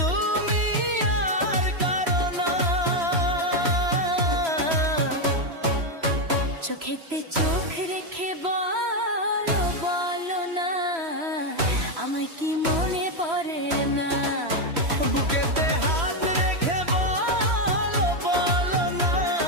তুমি আর কারো না। চোখেতে চোখ রেখে বলো বলো না, আমায় কি মনে পড়ে না? বুকেতে হাত রেখে বলো বলো না,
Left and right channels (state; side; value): late; left; 3.0 ms